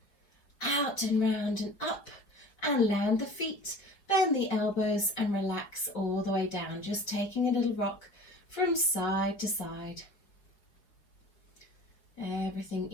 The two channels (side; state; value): right; late; 4.9 ms